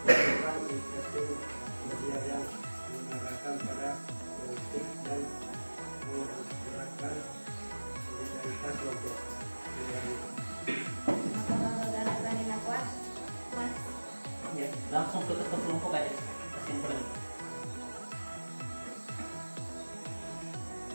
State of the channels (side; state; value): both; inverted; correlation -1.00